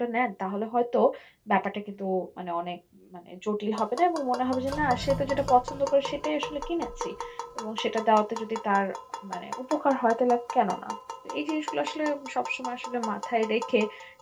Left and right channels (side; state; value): both; identical; correlation 1.00